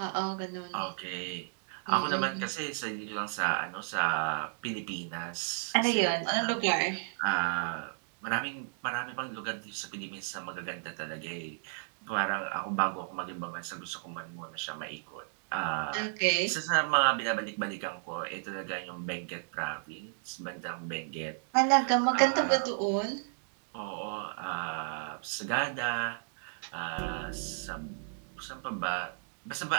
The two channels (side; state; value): left; silent; digital silence